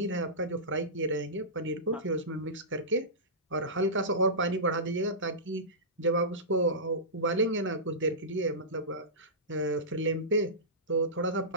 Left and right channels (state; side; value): normal; both; correlation -0.19